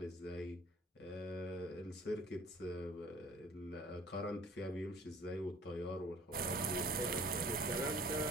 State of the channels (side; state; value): both; normal; correlation 0.51